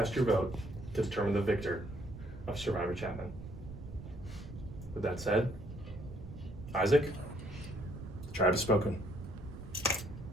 your vote to determine the victor of Survivor Chapman. With that said, Isaac, the tribe has spoken.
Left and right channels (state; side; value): noise; right; rumble, 12 dB below the sound